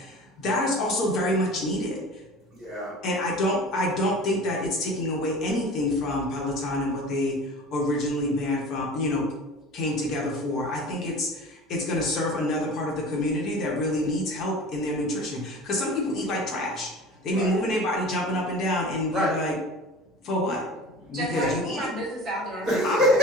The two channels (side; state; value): both; normal; correlation 0.39